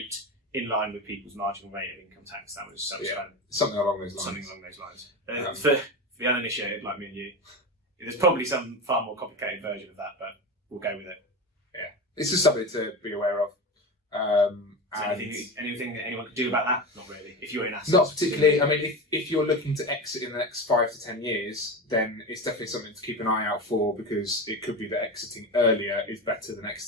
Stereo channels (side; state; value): both; normal; correlation 0.23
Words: in line with people's marginal rate of income tax. That was something along those lines. Something along those lines. For the uninitiated like me and you, there's probably some far more complicated version of that, but we'll go with it. Yeah, it's just something to be aware of. Anything that anyone could do about that? Not really. If you're in assets, not particularly. I mean, if you're looking to exit in the next 5 to 10 years, then it's definitely something to keep an eye out for, because it could be that exiting earlier is better than